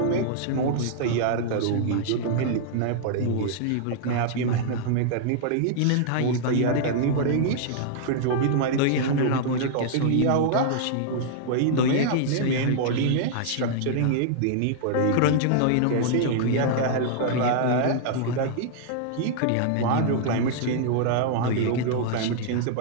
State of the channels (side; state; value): both; different; correlation -0.01